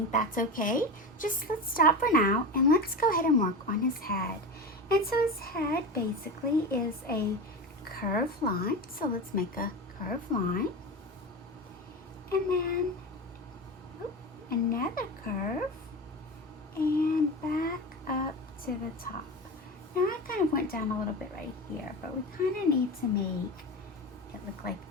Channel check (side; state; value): both; normal; correlation 0.25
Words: that's okay. Just let's stop for now and let's go ahead and work on his head. And so his head basically is a curved line. So let's make a curved line. And then another curve and back up to the top. Now I kind of went down a little bit right here, but we kind of need to make it look like